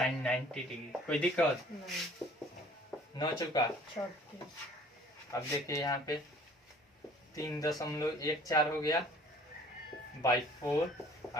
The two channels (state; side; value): normal; both; correlation 0.52